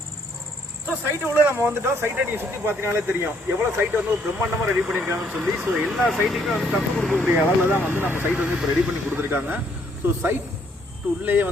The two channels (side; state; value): both; normal; correlation 0.68